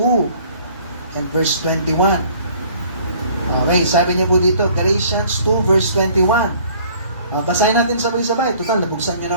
and verse 21. Okay, sabi niya po dito, Galatians 2 verse 21. Basahin natin sabay-sabay. Total, nabuksan niyo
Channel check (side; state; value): both; inverted; correlation -0.55